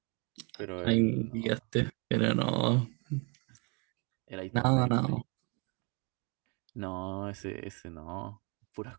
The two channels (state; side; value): quieter; left; 32.6 dB